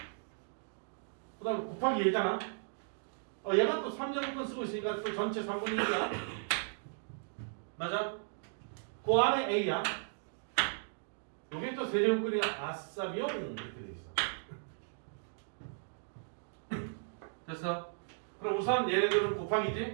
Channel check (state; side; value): silent; left; digital silence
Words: 그 다음에 곱하기 얘잖아. 얘가 또 3제곱근 쓰고 있으니까 또 전체 3분의 1이야. 맞아? 그 안에 A야. 여기 또 세제곱근이가 아싸비용 이렇게 돼 있어. 됐어? 그럼 우선 얘네들은